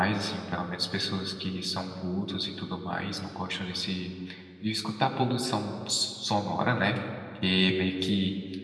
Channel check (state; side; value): identical; both; correlation 1.00